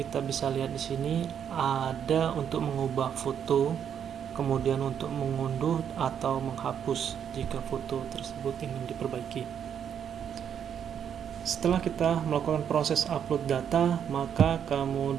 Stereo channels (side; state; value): left; quieter; 8.4 dB